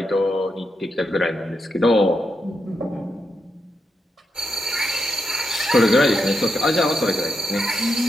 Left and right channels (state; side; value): normal; both; correlation 0.84